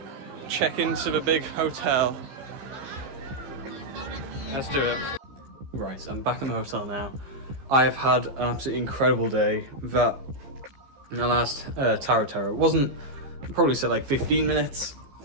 check into the big hotel. Let's do it. Right, I'm back in the hotel now. I have had an absolutely incredible day. That last Tower of Terror wasn't, I'd probably said like 15 minutes.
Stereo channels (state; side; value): late; left; 15 ms